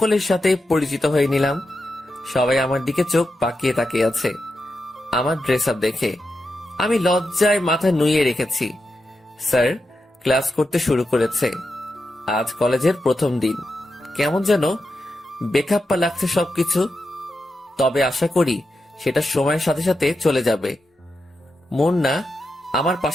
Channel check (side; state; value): both; normal; correlation 0.88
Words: সাথে পরিচিত হয়ে নিলাম। সবাই আমার দিকে চোখ পাকিয়ে তাকিয়ে আছে আমার ড্রেস আপ দেখে। আমি লজ্জায় মাথা নুইয়ে রেখেছি। স্যার ক্লাস করতে শুরু করেছে। আজ কলেজের প্রথম দিন। কেমন যেন বেখাপ্পা লাগছে সবকিছু। তবে আশা করি সেটা সময়ের সাথে সাথে চলে যাবে। মুন্না আমার